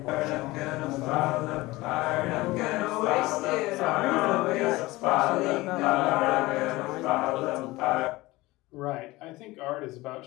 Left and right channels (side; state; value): right; quieter; 20.1 dB